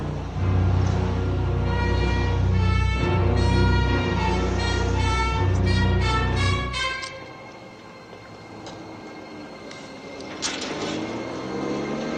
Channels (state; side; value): identical; both; correlation 1.00